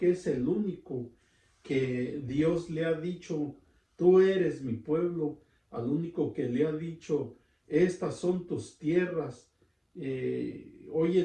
es el único que Dios le ha dicho, tú eres mi pueblo, al único que le ha dicho, estas son tus tierras. Hoy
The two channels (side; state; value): both; identical; correlation 1.00